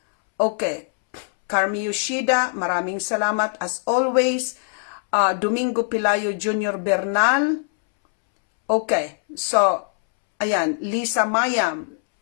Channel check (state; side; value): silent; right; 64 dB below the other